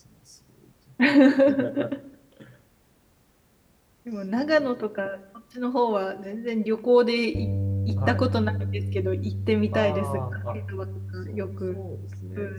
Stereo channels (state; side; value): identical; both; correlation 1.00